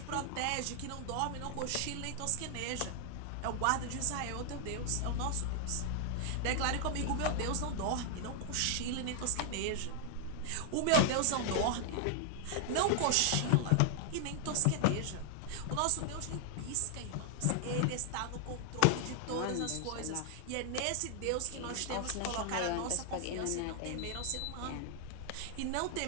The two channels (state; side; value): different; both; correlation 0.00